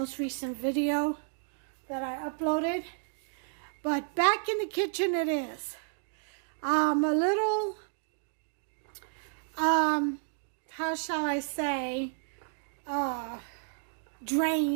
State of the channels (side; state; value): left; silent; digital silence